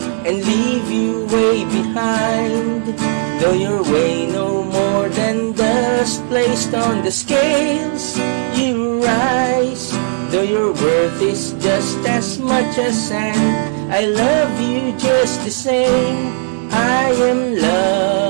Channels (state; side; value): silent; left; digital silence